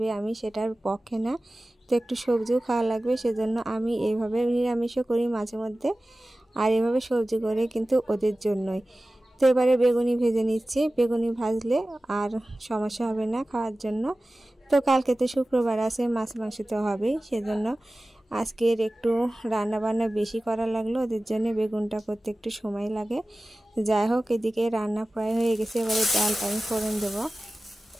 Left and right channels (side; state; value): both; normal; correlation 0.96